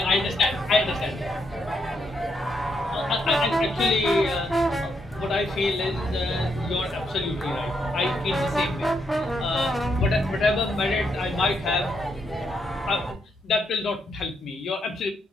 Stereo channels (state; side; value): normal; both; correlation 0.78